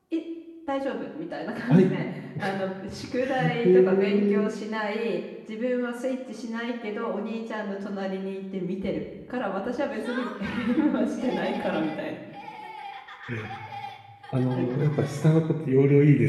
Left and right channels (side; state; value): both; identical; correlation 1.00